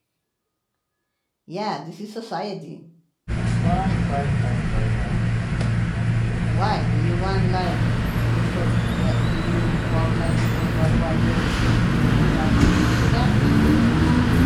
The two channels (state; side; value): identical; both; correlation 1.00